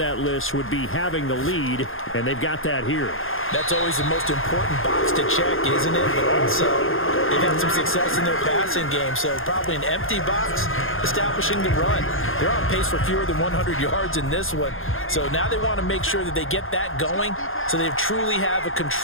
list would be having the lead, and they've got that here. That's always the most important box to check, isn't it? But also, they've had some success in their passing game, so probably an empty box establishing the run. They're on pace for fewer than 100 yards in this one. So now they want to make sure that they get that going so they truly have a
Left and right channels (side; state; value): right; late; 0.60 ms